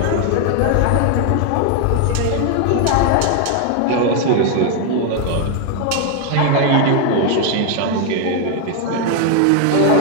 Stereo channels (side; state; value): both; different; correlation 0.00